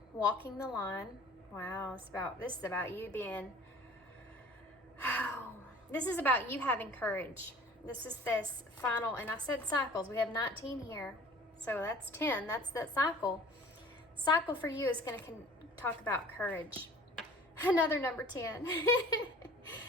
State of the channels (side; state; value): both; normal; correlation 0.47